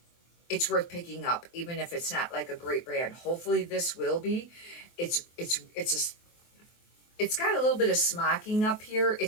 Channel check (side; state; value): right; late; 23 ms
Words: it's worth picking up, even if it's not a great brand. Hopefully this will be. It's got a little bit of smocking up here.